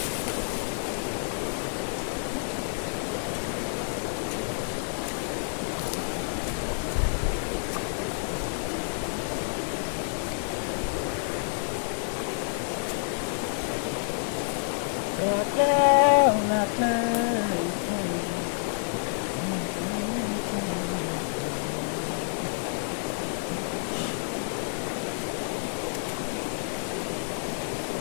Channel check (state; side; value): silent; right; digital silence